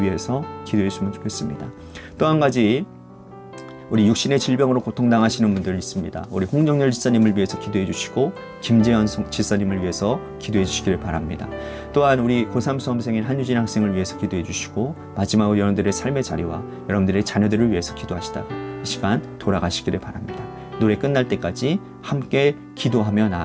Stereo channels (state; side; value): identical; both; correlation 1.00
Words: 위해서 기도했으면 좋겠습니다. 또 한 가지 우리 육신의 질병으로 고통당하시는 분들 있습니다. 우리 홍정열 지사님을 위해서 기도해 주시고 김재현 지사님을 위해서 기도해 주시기를 바랍니다. 또한 우리 고3 수험생인 한유진 학생을 위해서 기도해 주시고 마지막으로 여러분들의 삶의 자리와 여러분들의 자녀들을 위해서 기도하시다가 이 시간 돌아가시기를 바랍니다. 노래 끝날 때까지 함께 기도하며